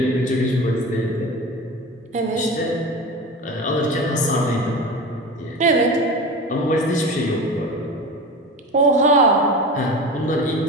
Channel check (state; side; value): normal; both; correlation 0.30